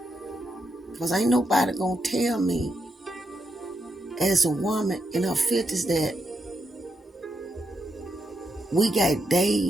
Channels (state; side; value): normal; both; correlation 0.83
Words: Because ain't nobody gonna tell me as a woman in her 50s that we got